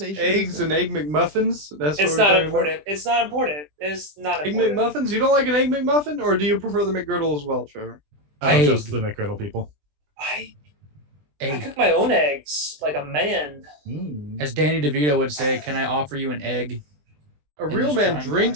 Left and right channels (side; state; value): left; late; 20 ms